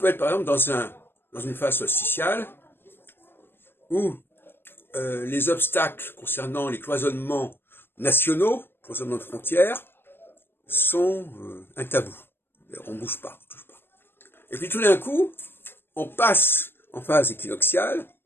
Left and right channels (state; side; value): late; right; 0.10 ms